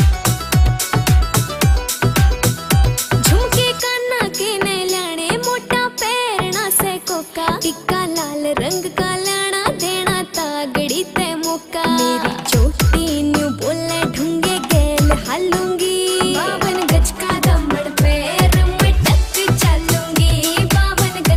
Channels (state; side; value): identical; both; correlation 1.00